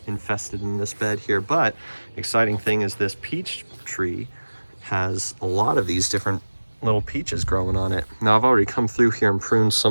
infested in this bed here, but exciting thing is this peach tree has a lot of these different little peaches growing on it. Now I've already come through here and pruned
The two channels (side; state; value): both; inverted; correlation -1.00